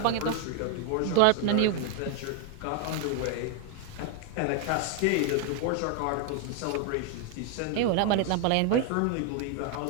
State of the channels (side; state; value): both; different; correlation 0.01